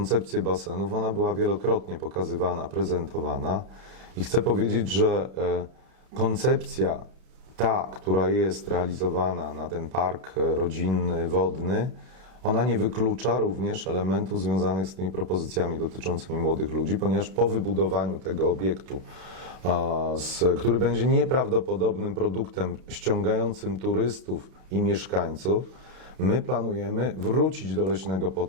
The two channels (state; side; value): late; left; 32 ms